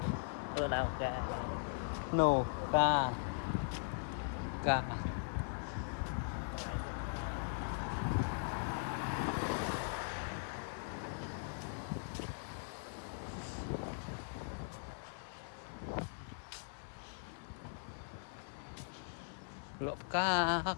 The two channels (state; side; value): silent; right; 51 dB below the other